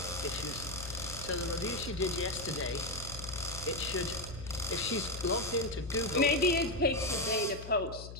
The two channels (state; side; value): noise; left; hum, 11 dB below the sound